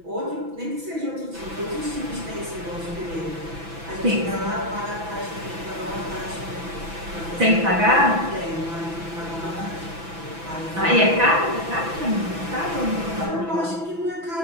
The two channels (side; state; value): left; late; 6.0 ms